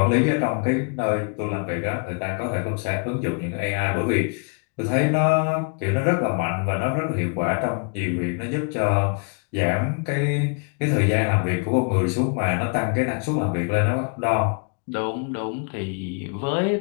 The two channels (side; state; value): right; quieter; 36.1 dB